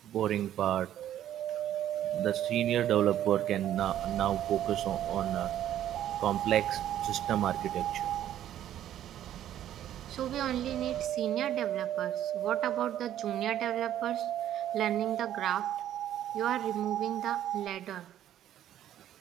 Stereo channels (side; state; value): left; quieter; 11.6 dB